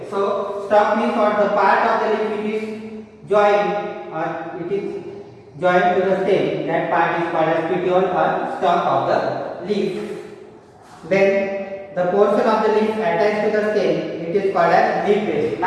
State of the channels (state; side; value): identical; both; correlation 1.00